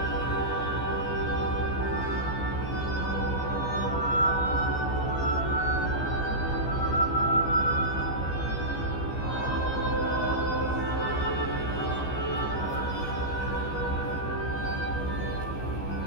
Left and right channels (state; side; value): late; right; 15 ms